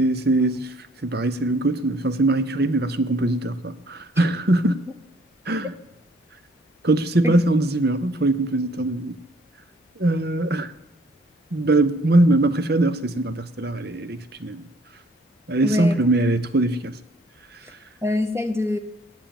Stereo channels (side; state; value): both; normal; correlation 0.62